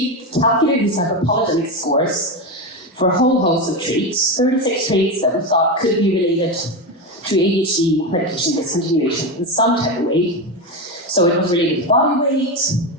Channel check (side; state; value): both; normal; correlation 0.15